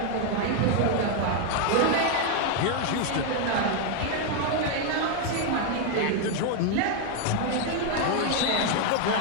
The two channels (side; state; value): both; different; correlation 0.01